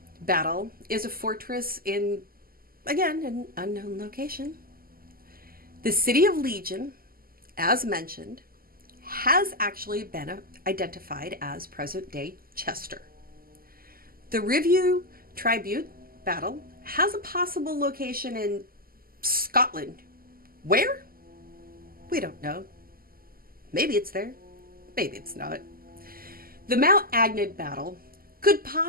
battle is a fortress in, again, an unknown location. The city of Legion, as mentioned, has actually been identified as present-day Chester. The Review Tribute battle has a possible location in Scotland. Where? We don't know. Maybe it's there, maybe it's not. The Mount Agnid battle could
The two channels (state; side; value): late; left; 0.42 ms